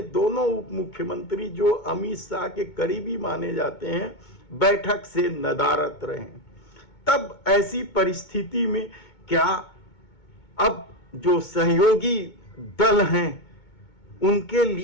दोनों उप मुख्यमंत्री जो अमित शाह के करीबी माने जाते हैं, बैठक से नदारद रहे। तब ऐसी परिस्थिति में क्या अब जो सहयोगी दल हैं उनके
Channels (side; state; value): right; late; 2.2 ms